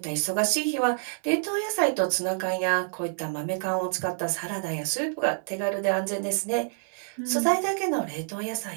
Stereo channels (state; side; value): silent; left; digital silence